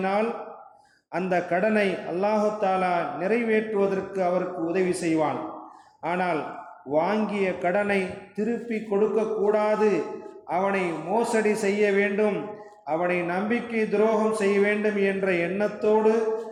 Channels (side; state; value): both; identical; correlation 1.00